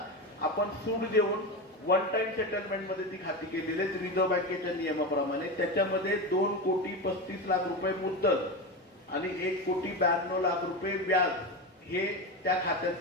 आपण सूट देऊन वन टाइम सेटलमेंट मध्ये ती खाती केलेली आहेत रिझर्व्ह बँकेच्या नियमाप्रमाणे. त्याच्यामध्ये 2,35,00,000 रुपये मुद्दल आणि 1,92,00,000 व्याज हे त्या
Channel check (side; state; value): both; normal; correlation 0.19